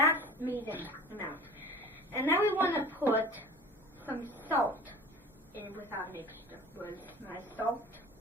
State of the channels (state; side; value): normal; both; correlation 0.41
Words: medium amount. And now we want to put some salt in with our mixture. Where's my salt?